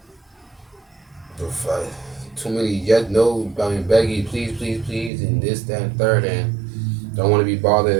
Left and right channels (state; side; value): drops out; left; at 5.1 s